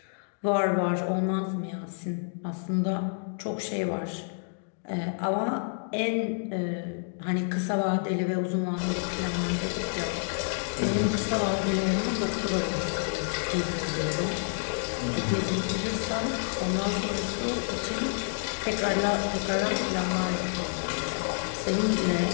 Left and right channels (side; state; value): right; silent; digital silence